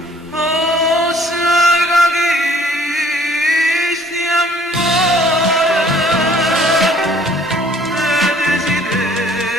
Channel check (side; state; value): both; normal; correlation 0.57